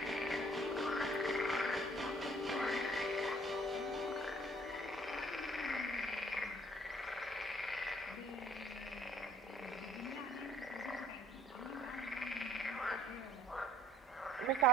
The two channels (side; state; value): both; normal; correlation 0.56